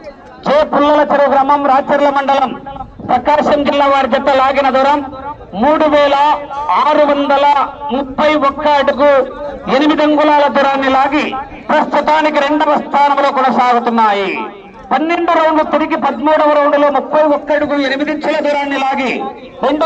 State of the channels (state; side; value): identical; both; correlation 1.00